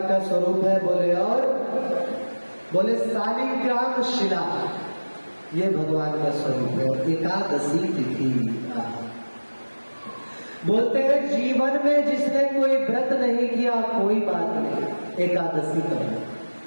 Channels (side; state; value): both; inverted; correlation -1.00